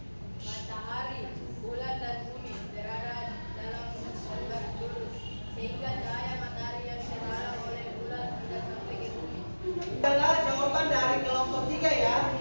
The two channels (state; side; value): inverted; both; correlation -1.00